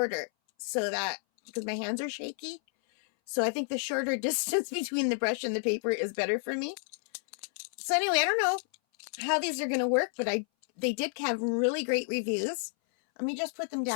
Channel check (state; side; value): silent; right; 57 dB below the other